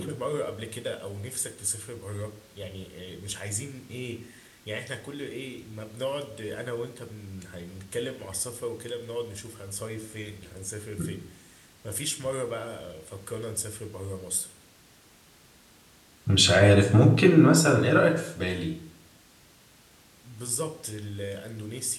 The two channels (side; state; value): both; identical; correlation 1.00